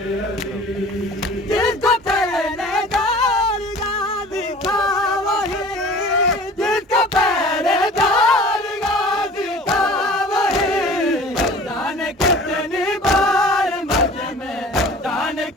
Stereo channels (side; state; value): both; normal; correlation 0.44